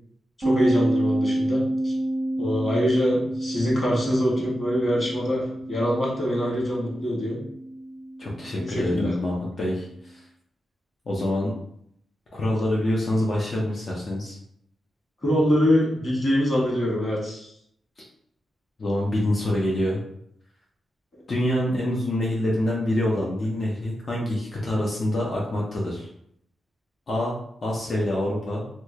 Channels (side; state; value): both; normal; correlation 0.89